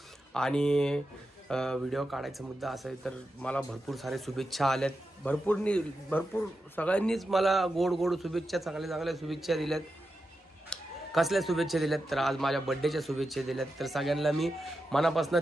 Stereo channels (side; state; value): both; normal; correlation 0.89